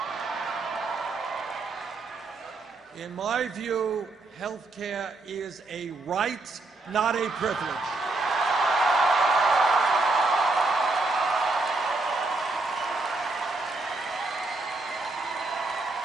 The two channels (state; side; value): quieter; left; 3.3 dB